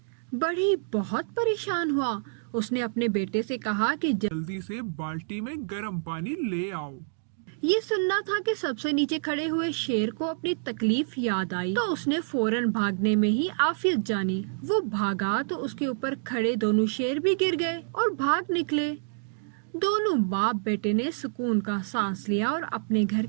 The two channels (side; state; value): left; silent; digital silence